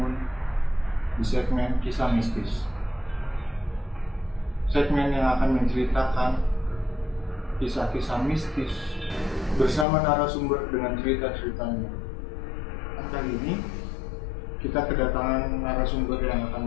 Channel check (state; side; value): drops out; right; at 9.9 s